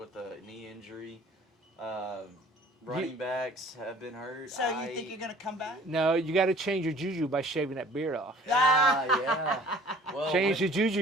a knee injury. Running backs have been hurt. So you think you're going to come back? No, you got to change your juju by shaving that beard off. Yeah. Well, Change the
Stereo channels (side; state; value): both; normal; correlation 0.51